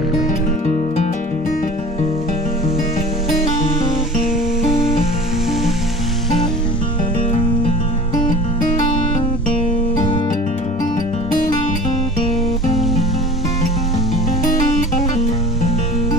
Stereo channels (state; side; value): normal; both; correlation 0.42